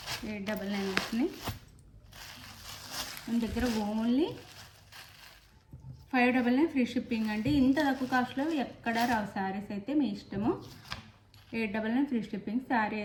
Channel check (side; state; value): both; identical; correlation 1.00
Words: 899 వస్తున్నాయి మన దగ్గర. ఓన్లీ 599 ఫ్రీ షిప్పింగ్ అండి. ఇంత తక్కువ కాస్ట్లో ఎక్కడ రావు శారీస్ అయితే, మీ ఇష్టము. 899 ఫ్రీ షిప్పింగ్. శారీ